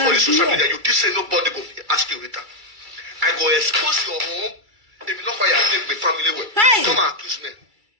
for the social media. You did say nobody go ask you later. I go expose your home. If you know why I live with family well. Hey. Come and accuse me.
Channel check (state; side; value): late; left; 2.3 ms